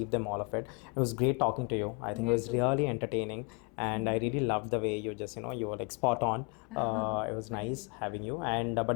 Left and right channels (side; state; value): right; quieter; 32.8 dB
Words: them all of it. It was great talking to you. I think it was really entertaining, and I really loved the way you just, you were like spot on. It was nice having you. And